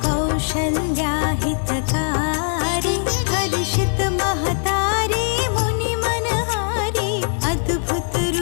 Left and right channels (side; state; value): right; silent; digital silence